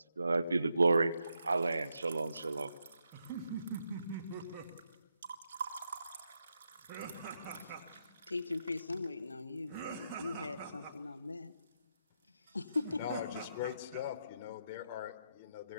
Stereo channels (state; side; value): inverted; both; correlation -0.82